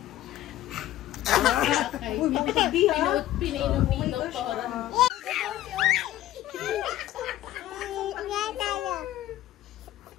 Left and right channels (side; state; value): right; quieter; 14.0 dB